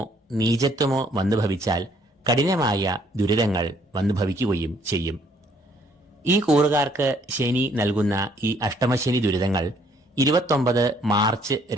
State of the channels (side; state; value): both; normal; correlation 0.64